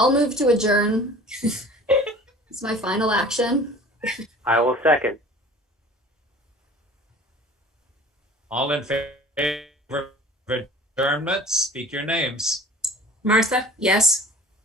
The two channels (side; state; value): both; normal; correlation 0.44